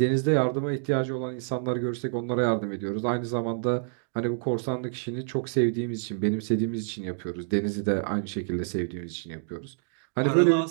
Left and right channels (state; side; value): silent; left; digital silence